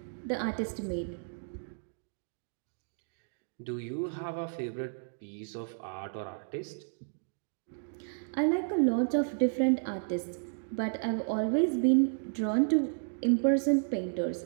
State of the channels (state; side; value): silent; left; digital silence